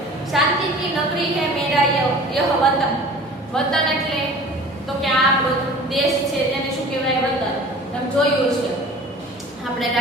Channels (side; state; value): both; normal; correlation 0.43